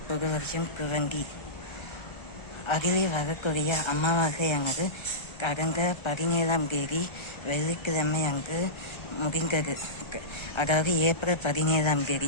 புது வருஷம் குவங்கி. அதிலே வரக்கூடிய அமாவாசையானது கடந்த 17ஆம் தேதி வெள்ளிக்கிழமை அன்று முடிந்தது. அதாவது ஏப்ரல் 17ஆம் தேதி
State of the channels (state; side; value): late; right; 1.3 ms